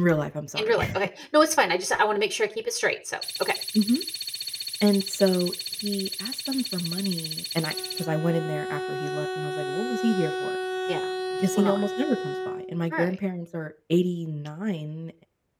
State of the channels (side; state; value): both; identical; correlation 1.00